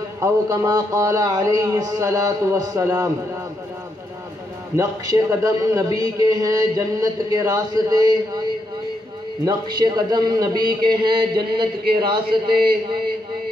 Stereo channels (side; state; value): both; normal; correlation 0.80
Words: أو كما قال عليه الصلاة والسلام. نقش قدم نبی کے ہیں جنت کے راستے، نقش قدم نبی کے ہیں جنت کے راستے،